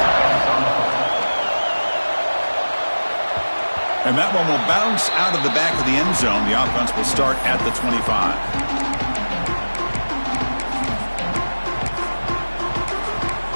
And that one will bounce out of the back of the end zone. The offense will start at the 25.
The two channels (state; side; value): inverted; both; correlation -1.00